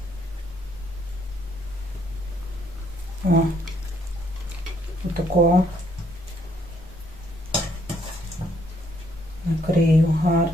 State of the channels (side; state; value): both; normal; correlation 0.69